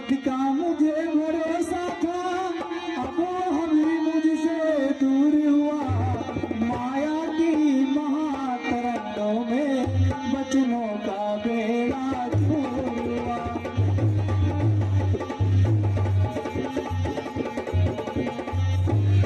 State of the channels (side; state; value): both; identical; correlation 1.00